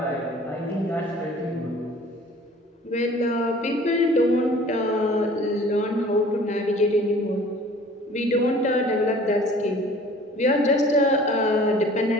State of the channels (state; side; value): normal; both; correlation 0.49